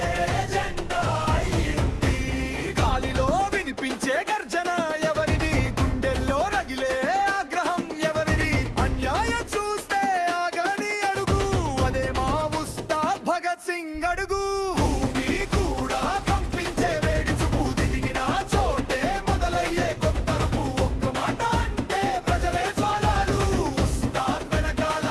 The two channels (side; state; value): both; identical; correlation 1.00